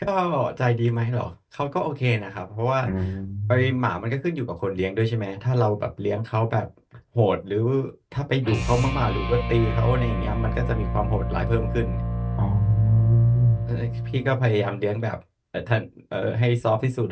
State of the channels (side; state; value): both; identical; correlation 1.00